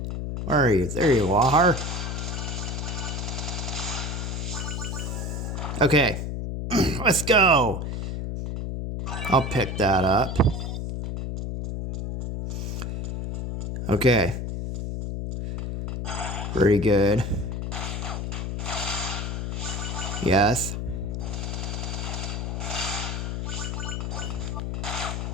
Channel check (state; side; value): noise; left; hum, 3 dB below the sound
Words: where are you? There you are. Okay, let's go. I'll pick that up. Okay. Pretty good. Yes.